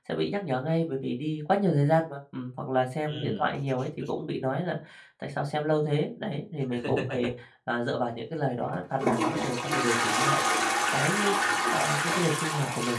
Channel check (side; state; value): both; identical; correlation 1.00